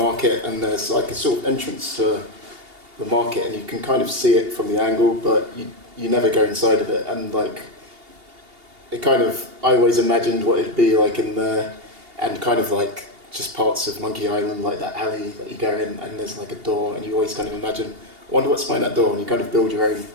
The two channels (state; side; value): late; left; 2.8 ms